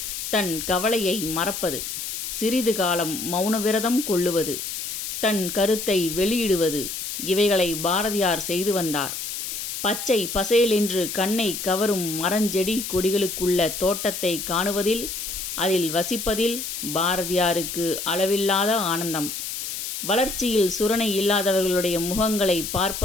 தன் கவலையை மறப்பது, சிறிது காலம் மௌன விரதம் கொள்ளுவது, தன் கருத்தை வெளியிடுவது, இவைகளை பாரதியார் செய்து வந்தார். பச்சை பசேலென்று கண்ணை கவரும் மரஞ்செடி கொடிகளுக்குள்ள தோட்டத்தை காணுவதில், அதில் வசிப்பதில் பாரதியாருக்கு அளவில்லாத ஆனந்தம். வளர்ச்சியில் சுரணை இல்லாதவர்களுடைய முகங்களை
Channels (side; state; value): left; noise; hiss, 5 dB below the sound